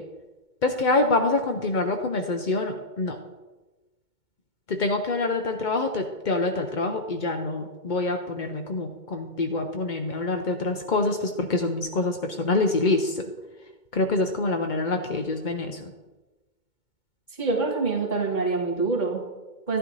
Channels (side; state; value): right; late; 2.2 ms